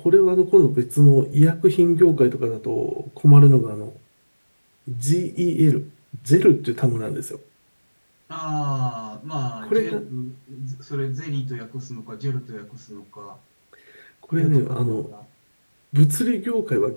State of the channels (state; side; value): inverted; both; correlation -1.00